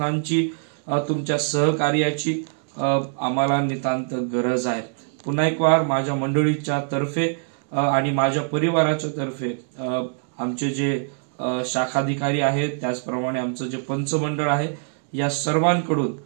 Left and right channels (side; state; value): left; silent; 63 dB below the other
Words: तुमच्या सहकार्याची आम्हाला नितांत गरज आहे। पुन्हा एक वार माझ्या मंडळीच्या तर्फे आणि माझ्या परिवाराच्या तर्फे आमचे जे शाखाधिकारी आहेत, त्याचप्रमाणे आमचं जे पंचमंडळ आहे, या सर्वांकडून